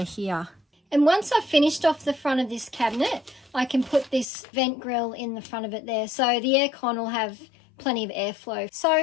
here. And once I've finished off the front of this cabinet, I can put this vent grill in the front of it there. So the aircon will have plenty of airflow.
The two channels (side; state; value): right; drops out; at 4.2 s